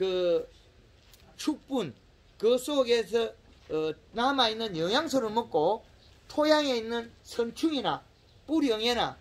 축분 그 속에서 남아있는 영양소를 먹고 토양에 있는 선충이나 뿌리영해나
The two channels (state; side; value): identical; both; correlation 1.00